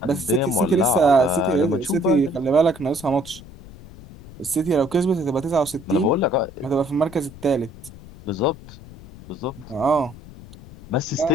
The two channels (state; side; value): noise; left; rumble, 18 dB below the sound